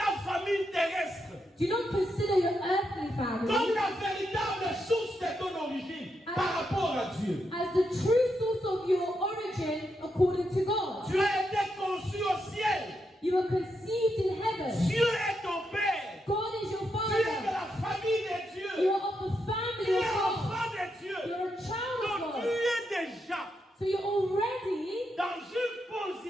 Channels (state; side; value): normal; both; correlation 0.83